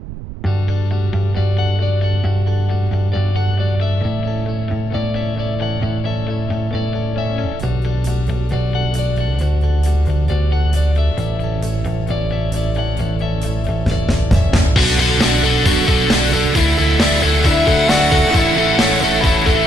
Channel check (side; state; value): right; noise; rumble, 10 dB below the sound